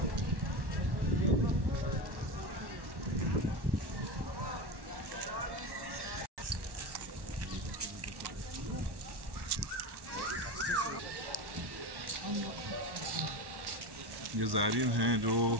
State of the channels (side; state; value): left; late; 1.1 ms